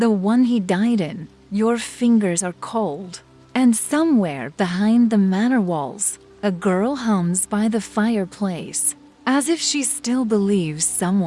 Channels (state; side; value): identical; both; correlation 1.00